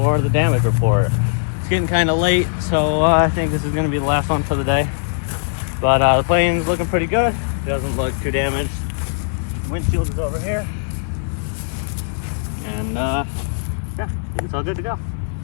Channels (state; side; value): silent; right; digital silence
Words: the damage report. It's getting kind of late, so I think this is going to be the last one for the day. But the plane's looking pretty good. It doesn't look too damaged. Windshield is over here. And yeah, I think it's all good to go.